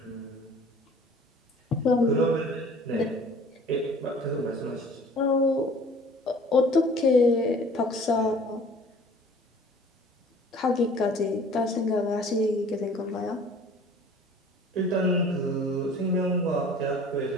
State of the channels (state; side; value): normal; both; correlation 0.49